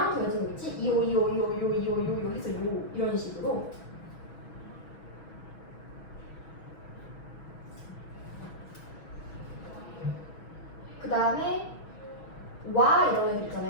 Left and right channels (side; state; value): right; late; 6.2 ms